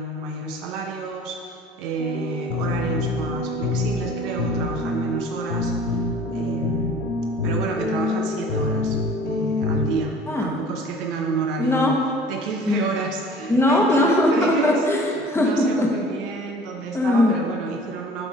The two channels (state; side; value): normal; both; correlation 0.48